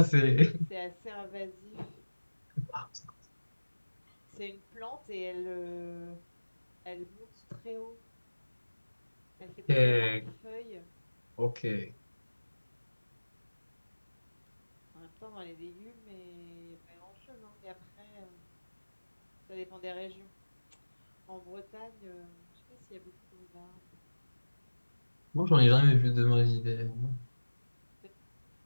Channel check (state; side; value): inverted; both; correlation -1.00